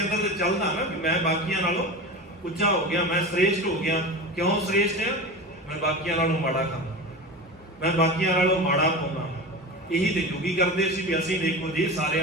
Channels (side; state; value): both; normal; correlation 0.29